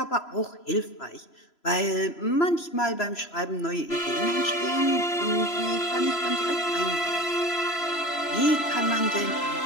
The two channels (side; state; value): right; late; 3.0 ms